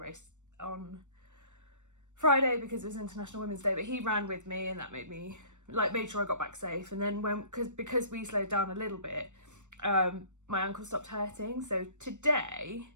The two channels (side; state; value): left; late; 0.84 ms